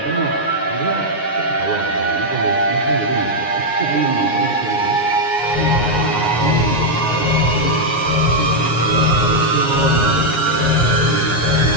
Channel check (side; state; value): right; late; 9.5 ms